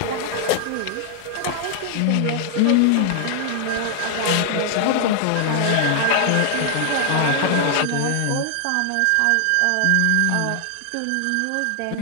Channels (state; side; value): different; both; correlation 0.00